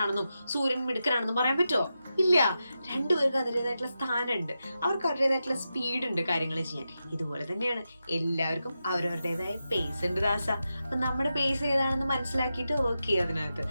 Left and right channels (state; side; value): inverted; both; correlation -0.89